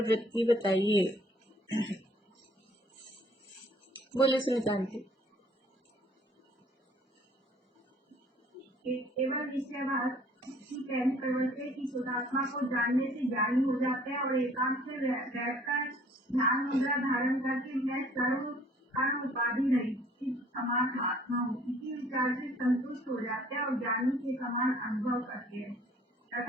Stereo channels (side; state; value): both; normal; correlation 0.57